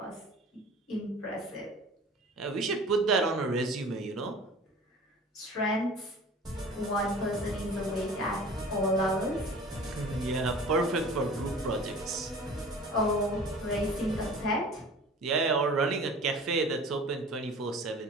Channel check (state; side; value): normal; both; correlation 0.43